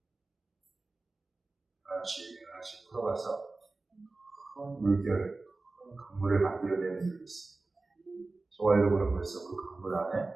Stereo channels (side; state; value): left; quieter; 3.4 dB